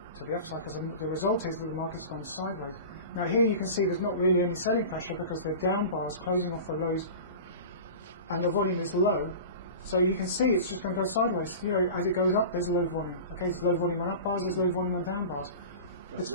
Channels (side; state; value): both; inverted; correlation -0.34